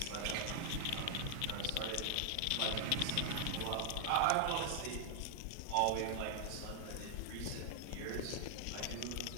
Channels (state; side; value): different; both; correlation 0.00